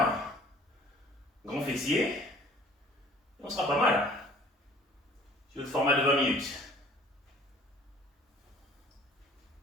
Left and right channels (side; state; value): both; normal; correlation 0.52